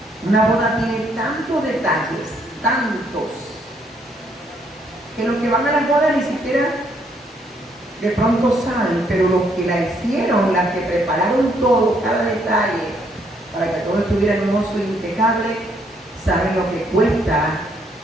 Una boda tiene tantos detalles, tantos, que los que van a las bodas ni siquiera de pronto saben, pero los que la hicieron, las que prepararon todo, cada detalle, para que todo estuviera hermoso y impecable, saben lo que cuesta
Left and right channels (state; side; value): normal; both; correlation 0.70